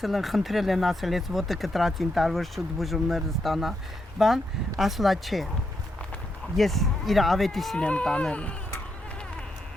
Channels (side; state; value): both; normal; correlation 0.81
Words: են, խնդրել են ասել, ես ոտը կտրածին տարվոր շուտ բուժումներ ստանա, բան, ասլա չէ, ես իր ավետիսին եմ տանելու։